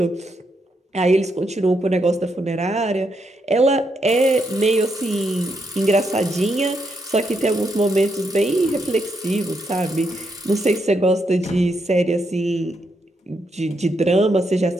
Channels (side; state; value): both; normal; correlation 0.79